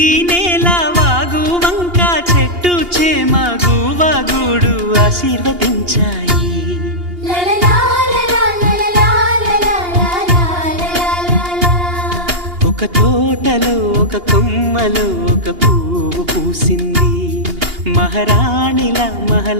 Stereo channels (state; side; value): late; left; 2.8 ms